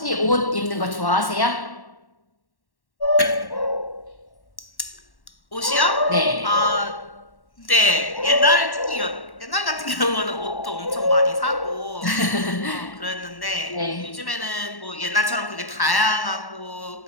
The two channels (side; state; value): right; late; 1.1 ms